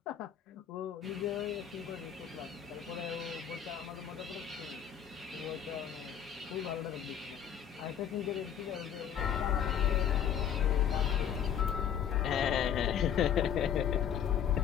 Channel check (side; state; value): right; quieter; 8.8 dB